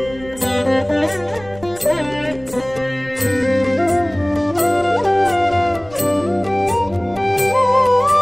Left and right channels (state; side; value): noise; right; rumble, 20 dB below the sound